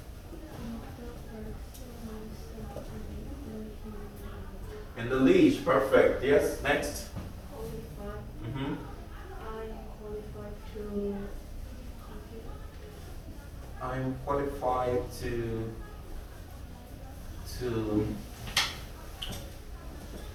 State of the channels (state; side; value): identical; both; correlation 1.00